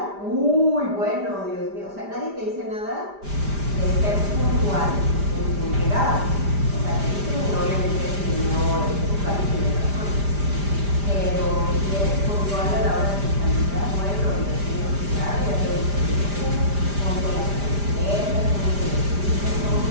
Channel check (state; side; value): late; left; 5.0 ms